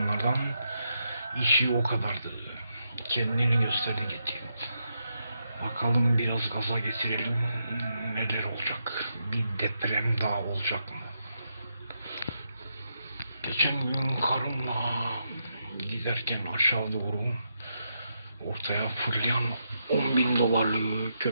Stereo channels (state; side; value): inverted; both; correlation -0.82